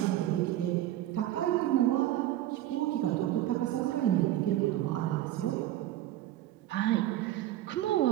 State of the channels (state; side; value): quieter; left; 13.8 dB